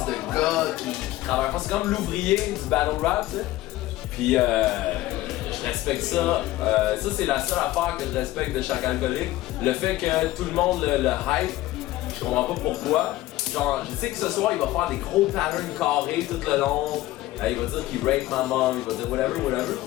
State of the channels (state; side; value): quieter; right; 16.4 dB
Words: de gars qui travaille pas. C'est comme l'ouvrier du battle rap, t'sais. Puis je respecte ça. Ça, c'est la seule affaire que je respecte de chaque alcoolique. Le fait que tout le monde le hype, je comprends pas pourquoi. Genre, je sais que ce soir, il va faire des gros patterns carrés tout le long. Il va dire qu'il rape ma mom, il va dire whatever.